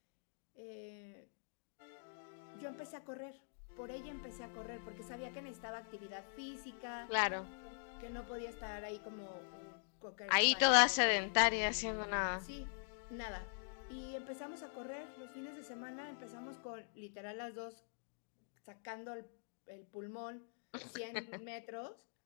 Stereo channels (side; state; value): right; silent; digital silence